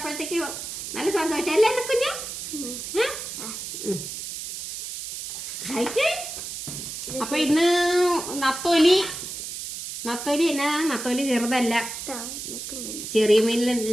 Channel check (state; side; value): noise; right; hiss, 7 dB below the sound